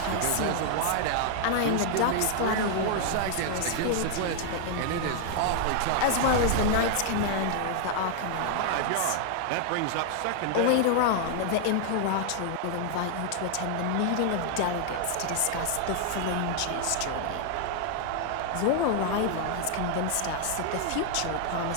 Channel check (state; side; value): different; both; correlation 0.00